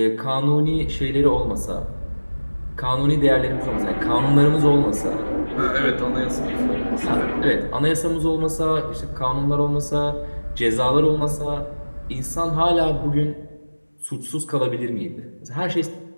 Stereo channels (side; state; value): both; inverted; correlation -1.00